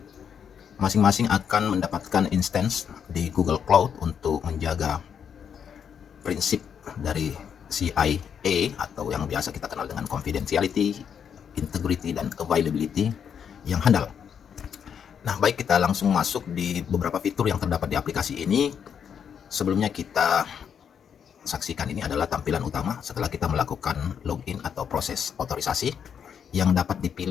masing-masing akan mendapatkan instance di Google Cloud untuk menjaga prinsip dari CIA atau yang biasa kita kenal dengan confidentiality, integrity, dan availability yang handal. Nah, baik, kita langsung masuk di beberapa fitur yang terdapat di aplikasi ini. Sebelumnya kita saksikan ini adalah tampilan utama setelah kita melakukan login atau proses otorisasi yang dapat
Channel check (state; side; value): quieter; right; 7.7 dB